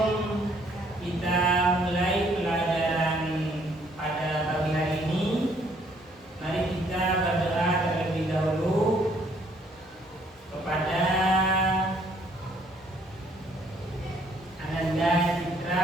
kita mulai pelajaran pada pagi hari ini, mari kita berdoa terlebih dahulu kepada Ananda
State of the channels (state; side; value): normal; both; correlation 0.64